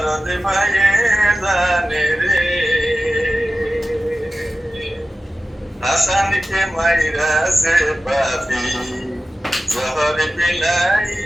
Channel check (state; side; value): normal; both; correlation 0.95